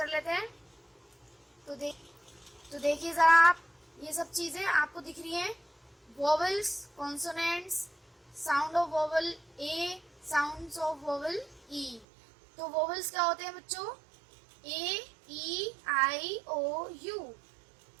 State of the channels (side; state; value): left; drops out; at 12.1 s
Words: लेते हैं। तो देखिए ज़रा आप, ये सब चीज़ें आपको दिख रही हैं। Vowels, consonants, sound of vowel A, sounds of vowel E. तो वोवल्स क्या होते हैं बच्चों? A, E, I, O, U.